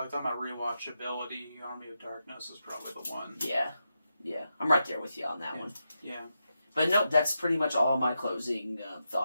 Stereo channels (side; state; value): both; inverted; correlation -0.87